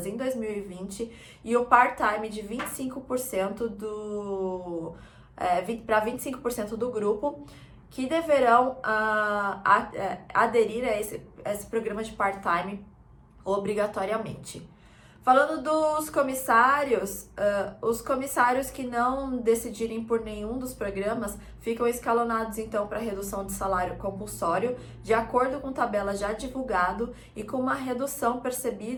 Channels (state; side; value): identical; both; correlation 1.00